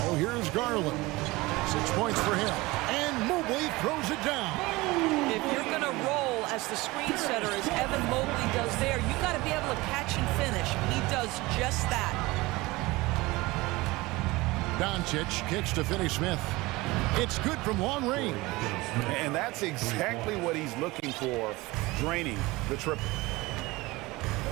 here's Garland. 6 points for him. And Mobley throws it down. If you're going to roll as the screen setter, as Evan Mobley does there, you got to be able to catch and finish. He does just that. Doncic kicks to Finney-Smith. It's good from long range. And that's exactly what he's looking for, draining the triple.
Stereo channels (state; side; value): quieter; left; 21.4 dB